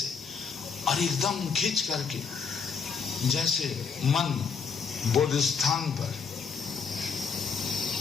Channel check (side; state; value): right; quieter; 5.9 dB